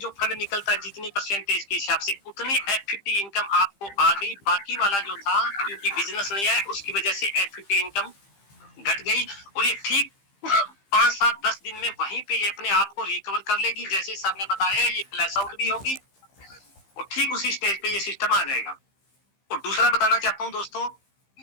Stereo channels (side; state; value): right; late; 15 ms